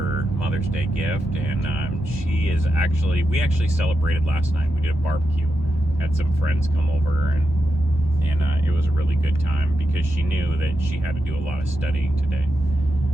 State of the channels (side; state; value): both; normal; correlation 0.87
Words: Mother's Day gift. And we actually celebrated last night. We did a barbecue, had some friends come over, and it was a really good time because she knew that she had to do a lot of studying today.